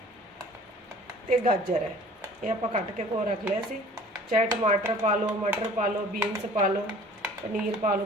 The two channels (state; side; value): normal; both; correlation 0.49